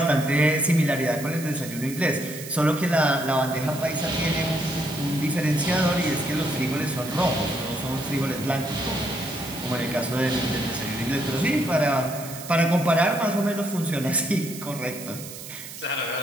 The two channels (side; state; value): right; noise; hiss, 12 dB below the sound